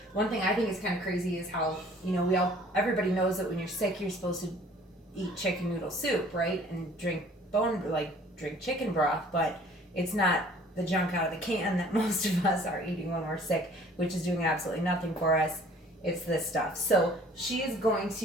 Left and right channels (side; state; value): both; normal; correlation 0.53